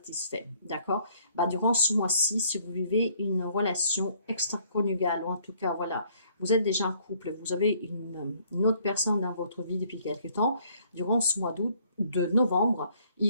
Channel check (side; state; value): both; inverted; correlation -0.63